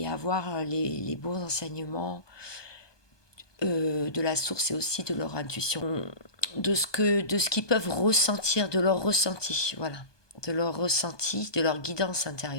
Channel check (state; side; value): late; right; 1.2 ms